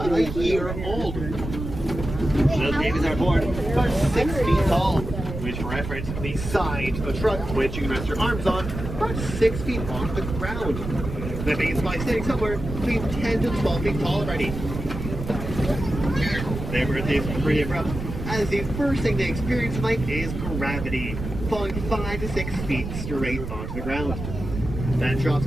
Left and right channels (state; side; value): noise; right; rumble, 7 dB below the sound